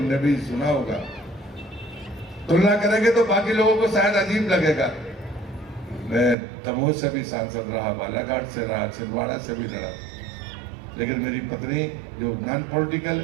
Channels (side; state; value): left; drops out; at 6.4 s